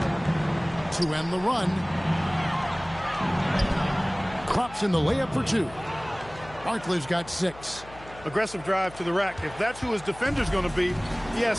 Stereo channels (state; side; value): noise; left; hum, 19 dB below the sound